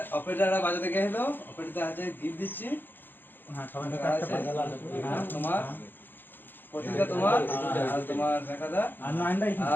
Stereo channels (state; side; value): late; right; 0.095 ms